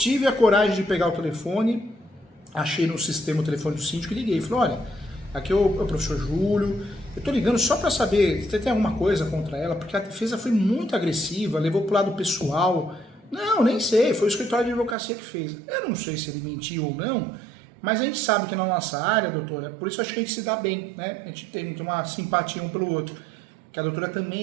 a coragem de pegar o telefone, achei no sistema o telefone do síndico e liguei. Falei, olha, aqui é o professor Júlio, eu tô ligando só para saber se tem alguma coisa contra ela, porque a defesa foi muito agressiva, levou pro lado pessoal. Não, nem sei, foi o escritório de advocacia que fez. Eu não sei se ele mentiu ou não, mas a gente sabe que na nossa área, doutora, por isso acho que a gente se dá bem, né? A gente tem uma simpatia um pelo outro. Que a doutora também é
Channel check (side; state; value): left; drops out; at 15.0 s